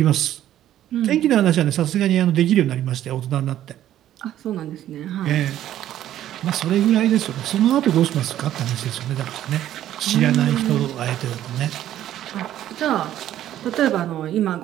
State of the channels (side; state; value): left; quieter; 12.2 dB